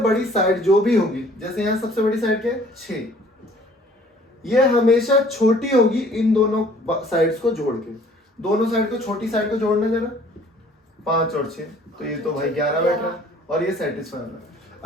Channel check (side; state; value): both; normal; correlation 0.55